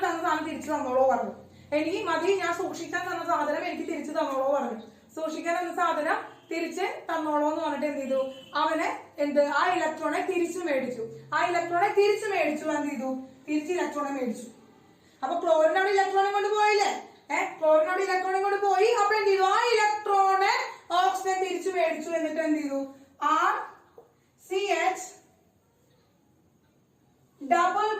തന്ന സാധനം തിരിച്ചു തന്നോളോ പറഞ്ഞു. എനിക്ക് മതി, ഞാൻ സൂക്ഷിക്കാൻ തന്ന സാധനം എനിക്ക് തിരിച്ചു തന്നോളോ പറഞ്ഞു. സൂക്ഷിക്കാൻ തന്ന സാധനം തിരിച്ച് തന്നോളോ എന്ന് പറഞ്ഞിട്ട് എന്ത് ചെയ്തു, അവന് ആ ഇലക്ട്രോണെ തിരിച്ചു മേടിച്ചു. എന്ത് ചെയ്തു, തിരിച്ച് ഇലക്ട്രോണെ മേടിച്ചു. അപ്പൊ ക്ലോറിനോട് ഇലക്ട്രോണെ കൊണ്ട് പോയില്ലേ, അപ്പൊ എന്ത് ചെയ്തു, ആ ഇലക്ട്രോണെ ഓക്സിജൻ തിരിച്ചു മേടിച്ചു. എന്നിട്ട് എന്ത് ചെയ്തു, RCH ഡബിൾ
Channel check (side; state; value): both; identical; correlation 1.00